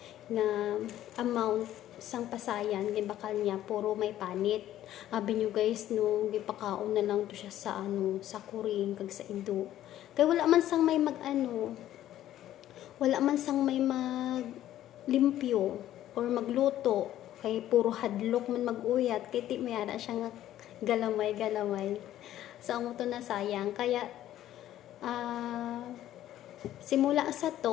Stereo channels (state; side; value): quieter; right; 12.8 dB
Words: nga amount sang pasayan gibakal niya puro may panit. Abi nyo guys no, gipakaon na lang to siya sa sa kuring kag sa ido. Kay wala man sang may wala man sang may maglimpyo or magluto. Kay puro hadlok man maguyat kay ti mayara siya nga galamay. So amo to na sayang kaya simula sa